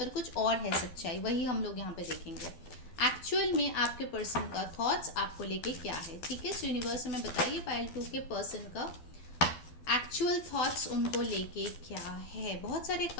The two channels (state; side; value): late; right; 12 ms